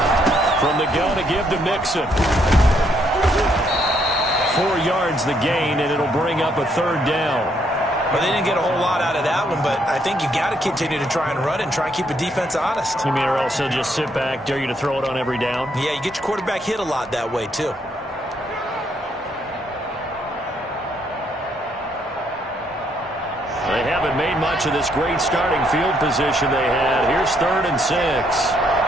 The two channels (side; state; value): both; normal; correlation 0.72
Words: From the gun to give to Mixon. 4 yards the gain, and it'll bring up a 3rd down. Well, they didn't get a whole lot out of that one, but I think you got to continue to try and run it and try and keep the defense honest. You mean, or else he'll just sit back, dare you to throw it on every down? Yeah, you get your quarterback hit a lot that way, too. They haven't made much of this great starting field position they had. Here's 3rd and 6.